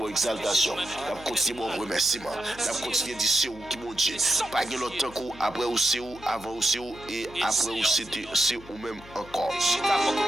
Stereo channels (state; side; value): noise; left; hum, 19 dB below the sound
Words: exaltation. Nous continuons mon remerciement. Nous continuons de dire c'est où qui mon Dieu. Pas de l'autre coup, après où c'est où, avant où c'est où, et après où c'est où même encore.